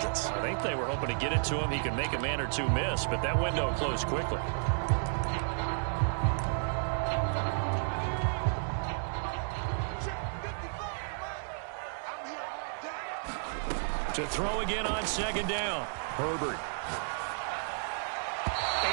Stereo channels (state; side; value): silent; left; digital silence